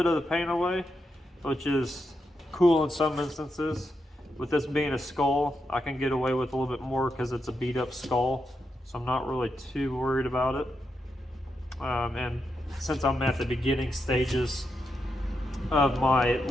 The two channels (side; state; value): both; normal; correlation 0.84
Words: of the paint away, which is cool in some instances. With this being a skull, I can get away with a little bit more because it's a beat up skull. So I'm not really too worried about it. And since I'm at the beginning stages of my